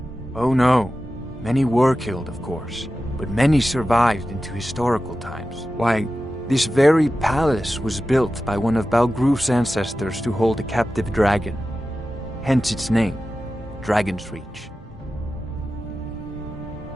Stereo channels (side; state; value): both; normal; correlation 0.93